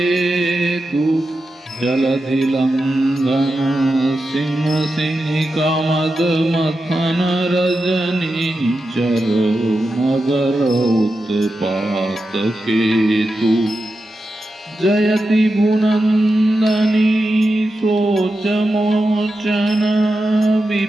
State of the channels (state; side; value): normal; both; correlation 0.90